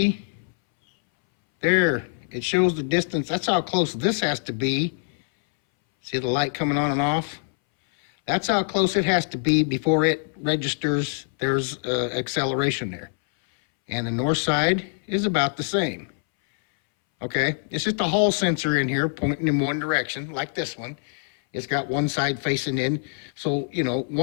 there, it shows the distance. That's how close this has to be. See the light coming on and off? That's how close it has to be before it registers there's acceleration there. And the north side is about the same. Okay, it's just a Hall sensor in here pointing in one direction, like this one. It's got one side facing in. So, you know,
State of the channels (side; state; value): right; silent; 61 dB below the other